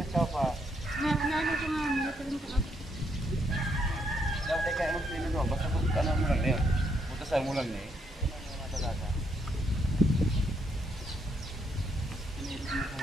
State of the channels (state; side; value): normal; both; correlation 0.75